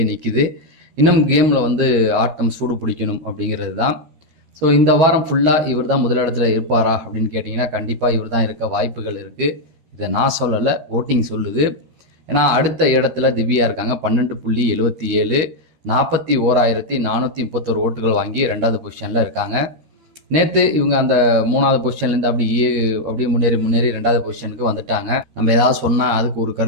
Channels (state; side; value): late; left; 13 ms